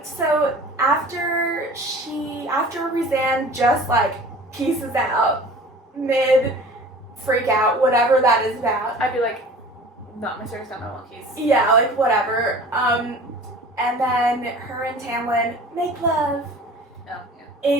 So after Rhysand just like pieces out mid freak out, whatever that is about. I'd be like, not my circus, not my monkeys. Yeah, like whatever. And then her and Tamlin make love Oh, yeah.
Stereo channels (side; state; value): both; normal; correlation 0.43